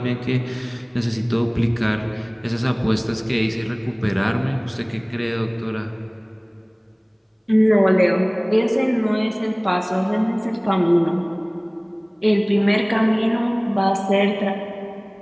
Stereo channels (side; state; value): both; identical; correlation 1.00